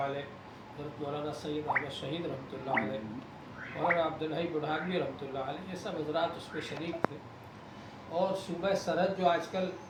علیہ، حضرت مولانا سید احمد شہید رحمۃ اللہ علیہ، مولانا عبدالحی بڑھانوی رحمۃ اللہ علیہ، یہ سب حضرات اس میں شریک تھے۔ اور صوبہ سرحد جو آج کل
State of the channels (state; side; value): identical; both; correlation 1.00